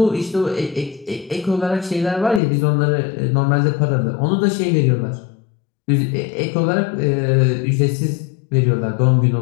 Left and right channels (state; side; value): drops out; right; at 2.4 s